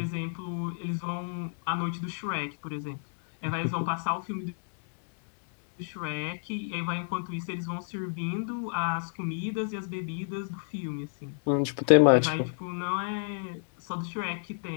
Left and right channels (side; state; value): right; silent; digital silence